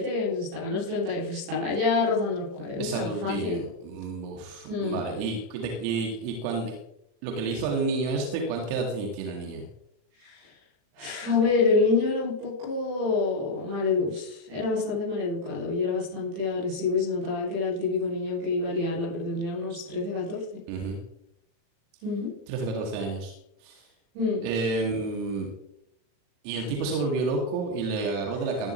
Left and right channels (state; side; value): late; left; 37 ms